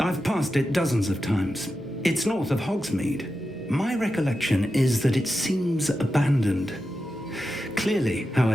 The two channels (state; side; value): normal; both; correlation 0.90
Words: passed it dozens of times. It's north of Hogsmeade. My recollection is that it seems abandoned. Clearly,